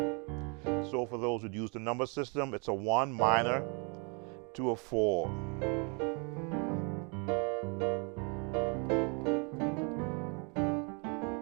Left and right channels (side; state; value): left; quieter; 35.1 dB